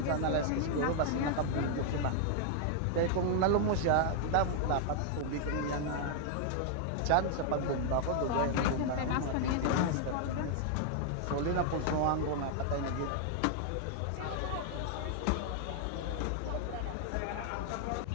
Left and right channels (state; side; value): different; both; correlation 0.00